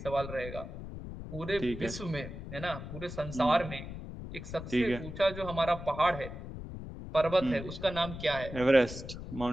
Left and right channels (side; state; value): left; noise; rumble, 10 dB below the sound